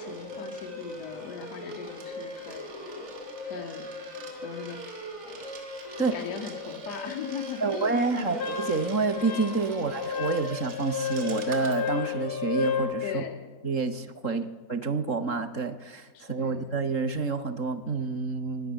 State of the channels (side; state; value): right; late; 3.7 ms